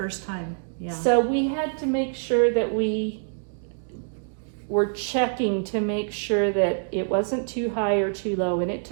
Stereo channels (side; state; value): left; silent; digital silence